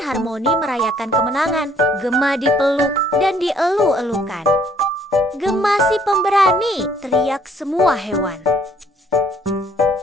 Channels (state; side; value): normal; both; correlation 0.62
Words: merayakan kemenangan. Gema dipeluk dan dielu-elukan. "Gema si pemberani!" teriak semua hewan.